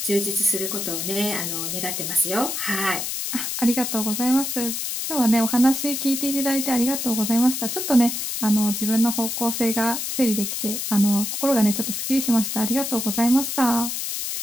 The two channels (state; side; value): noise; left; hiss, 3 dB below the sound